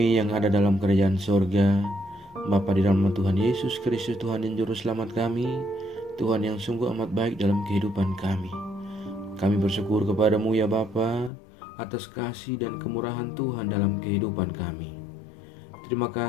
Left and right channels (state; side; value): drops out; right; at 11.3 s